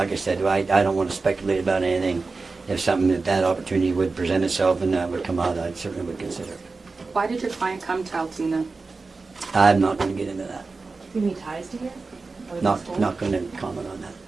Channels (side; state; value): left; quieter; 4.0 dB